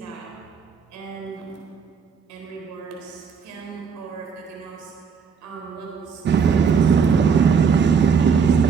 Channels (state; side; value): quieter; left; 6.2 dB